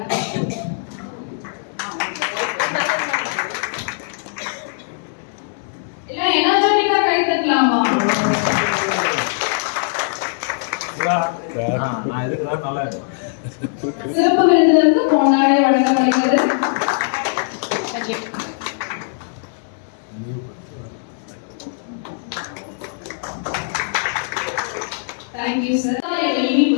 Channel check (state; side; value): silent; right; digital silence